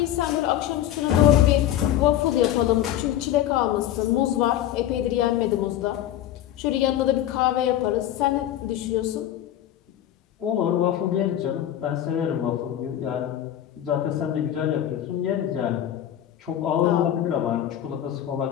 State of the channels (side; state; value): right; quieter; 11.7 dB